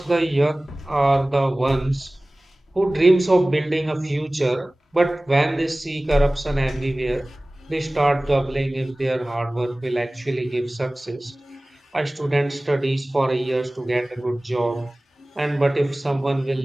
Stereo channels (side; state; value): both; normal; correlation 0.98